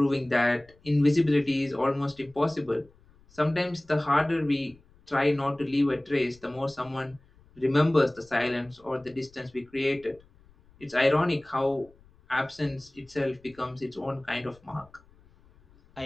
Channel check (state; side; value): noise; left; rumble, 29 dB below the sound